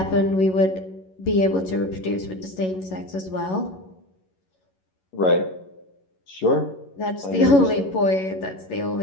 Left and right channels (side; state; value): right; late; 11 ms